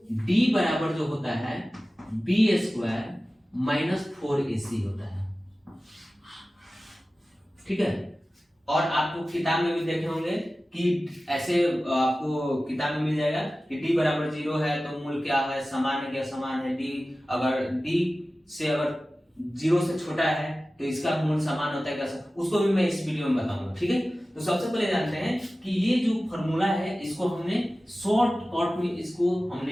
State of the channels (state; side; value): normal; both; correlation 0.96